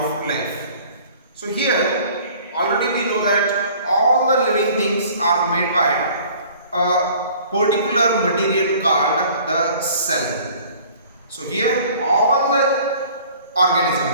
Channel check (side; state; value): both; inverted; correlation -0.50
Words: life. So, here already we know that all the living things are made by a particular material called the cell. So here all the